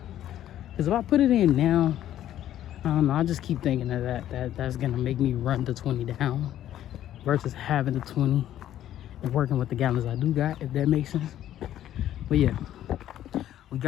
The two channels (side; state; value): right; quieter; 12.0 dB